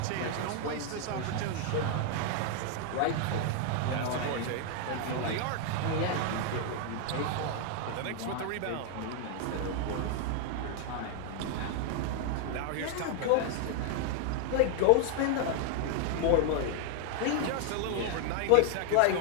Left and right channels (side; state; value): both; different; correlation 0.00